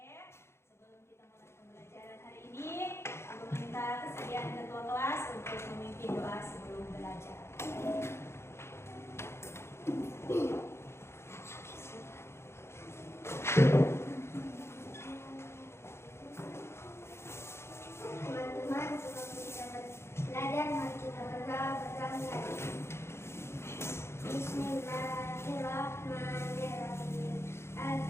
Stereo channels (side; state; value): right; late; 0.12 ms